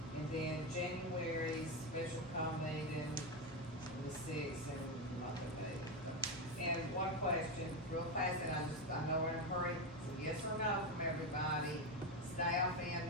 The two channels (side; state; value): both; normal; correlation 0.11